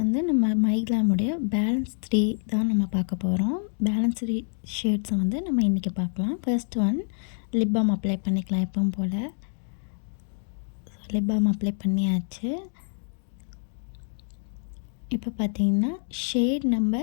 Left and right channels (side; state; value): right; silent; 60 dB below the other